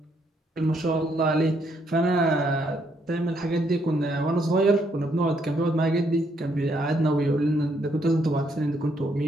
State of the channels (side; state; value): both; normal; correlation 0.73